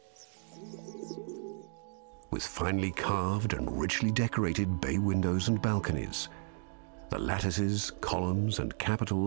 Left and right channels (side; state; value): left; silent; 55 dB below the other